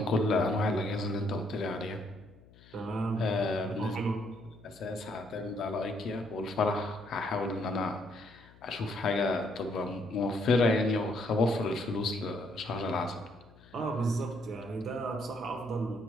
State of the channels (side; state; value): left; noise; hum, 24 dB below the sound